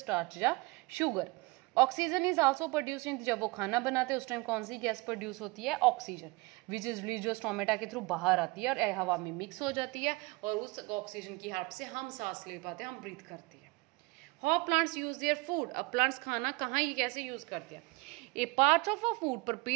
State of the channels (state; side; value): quieter; left; 25.3 dB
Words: या sugar. Oxygen is also produce in, जब वो खाना बनाते हैं उस टाइम कौन सी गैस प्रोड्यूस होती है, ऑक्सीजन, विच इज रिलीज जो स्टोमेटा के थ्रू बाहर आती है और हवा में मिक्स हो जाती है और उस ऑक्सीजन की हेल्प से हम सांस ले पाते हैं, हम ब्रीथ करते हैं। How plants use their food, अब प्लांट्स खाना कहाँ ये कैसे यूज करते हैं। A part of a food